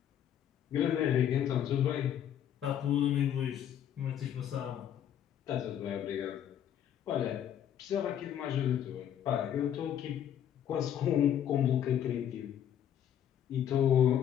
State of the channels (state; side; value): quieter; right; 10.0 dB